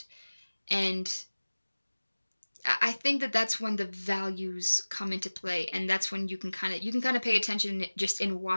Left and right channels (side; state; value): both; inverted; correlation -1.00